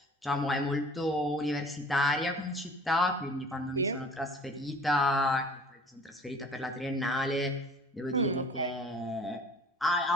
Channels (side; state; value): both; normal; correlation 0.48